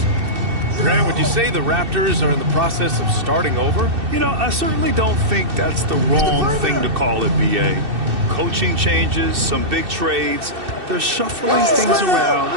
Grant, would you say the Raptors are in the process of starting over? You know, I certainly don't think that's the wrong thing to call it, B.A. Coaching changes, some big trades. They're shuffling things around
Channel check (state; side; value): late; left; 2.6 ms